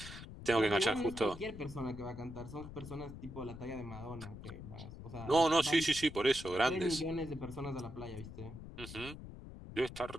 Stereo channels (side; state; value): left; noise; rumble, 12 dB below the sound